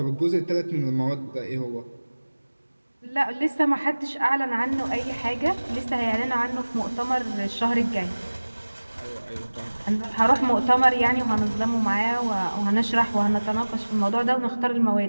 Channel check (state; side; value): inverted; both; correlation -1.00